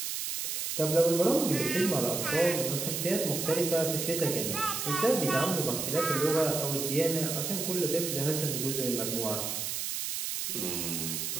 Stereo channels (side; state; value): right; noise; hiss, 3 dB below the sound